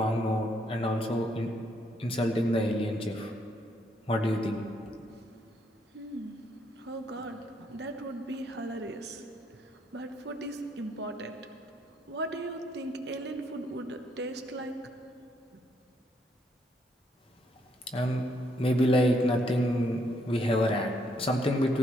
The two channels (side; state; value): both; normal; correlation 0.72